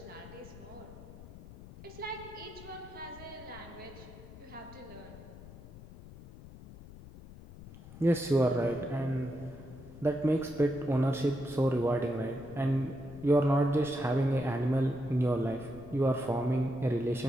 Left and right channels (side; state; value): left; noise; rumble, 17 dB below the sound